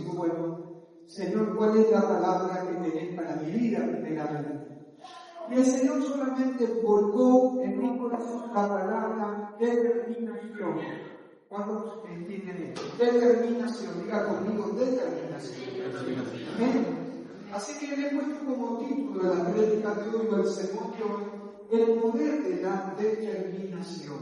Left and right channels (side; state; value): both; identical; correlation 1.00